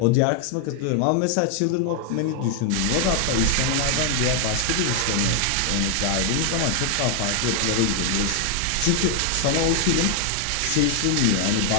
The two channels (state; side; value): different; both; correlation 0.00